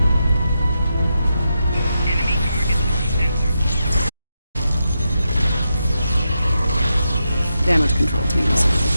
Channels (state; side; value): inverted; both; correlation -0.86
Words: Damage control teams.